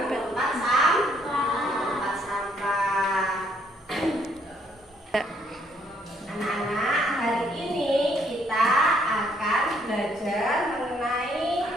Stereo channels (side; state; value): both; normal; correlation 0.68